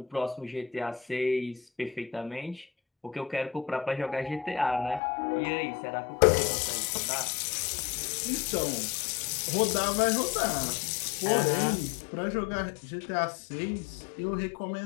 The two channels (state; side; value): drops out; right; at 5.0 s